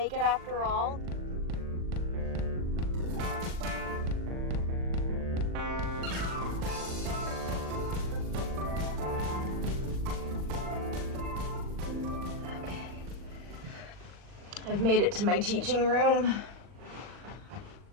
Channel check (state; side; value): late; left; 39 ms